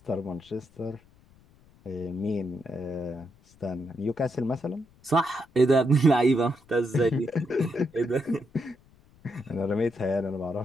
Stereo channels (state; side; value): noise; left; rumble, 29 dB below the sound